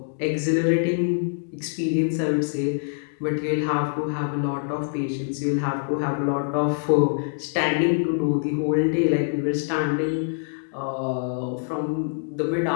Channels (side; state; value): right; silent; digital silence